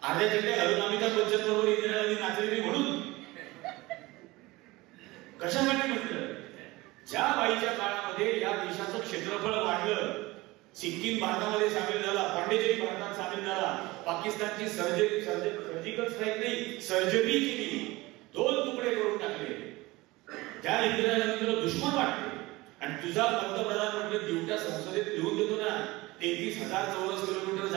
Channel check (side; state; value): left; quieter; 20.9 dB